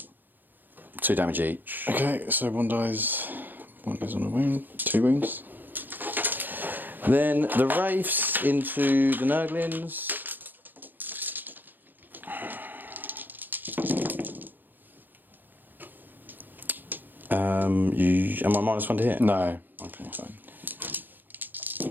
2 damage each. Okay, so 1 dies. 1 goes on a wound. 2 wounds. Then the Wraiths into the Nurglings. Am I -1 to hit? No. Okay, fine.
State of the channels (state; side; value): late; left; 0.089 ms